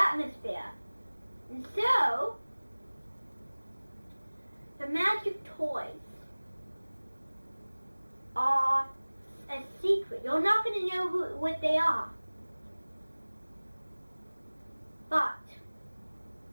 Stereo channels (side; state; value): both; inverted; correlation -1.00